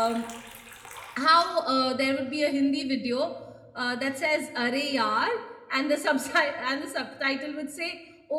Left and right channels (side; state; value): both; identical; correlation 1.00